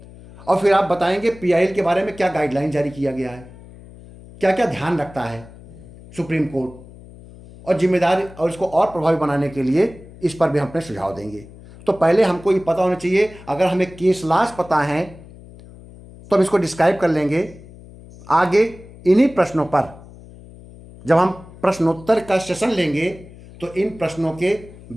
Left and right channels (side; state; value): left; noise; hum, 19 dB below the sound